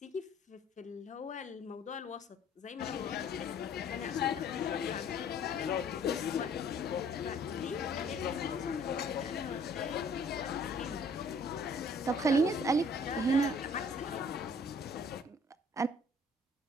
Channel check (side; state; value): both; normal; correlation 0.56